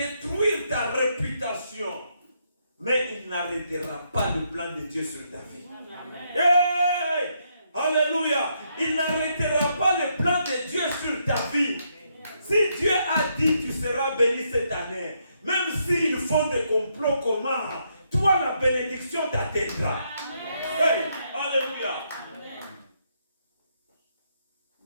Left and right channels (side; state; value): both; inverted; correlation -0.76